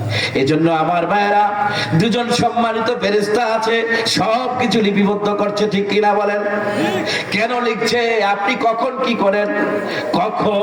এজন্য আমার ভাইরা, দুজন সম্মানিত ফেরেশতা আছে, সব কিছু লিপিবদ্ধ করছে, ঠিক কিনা বলেন? কেন লিখছে? আপনি কখন কি করেন,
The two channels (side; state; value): both; identical; correlation 1.00